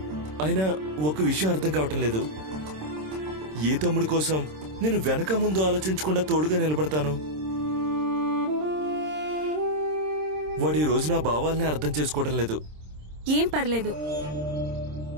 అయినా ఒక విషయం అర్థం కావటం లేదు. ఏ తమ్ముడి కోసం నేను వెనక ముందు ఆలోచించకుండా తోడుగా నిలబడతాను? వాడు ఈ రోజు నా భావాల్ని అర్థం చేసుకోవడం లేదు. ఏం పర్లేదు,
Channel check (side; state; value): left; late; 26 ms